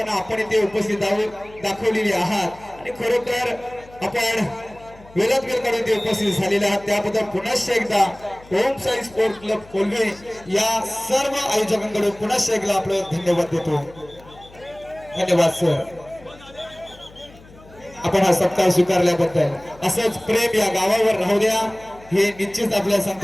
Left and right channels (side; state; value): left; noise; hum, 23 dB below the sound